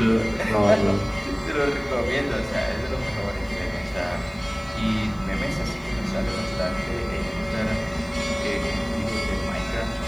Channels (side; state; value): both; identical; correlation 1.00